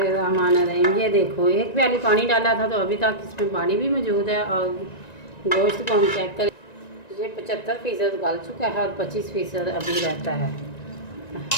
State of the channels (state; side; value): late; right; 1.9 ms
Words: ये देखो, 1 प्याली पानी डाला था तो अभी तक इसमें पानी भी मौजूद है, और गोश्त को हम चेक करें, ये 75% गल चुका है और 25% अभी रहता है।